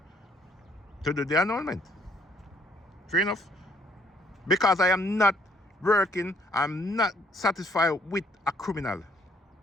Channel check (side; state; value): both; normal; correlation 0.65